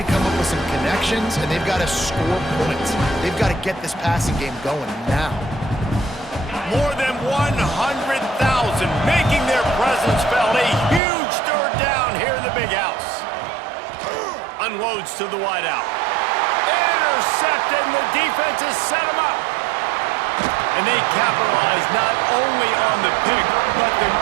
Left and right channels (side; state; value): left; drops out; at 11.0 s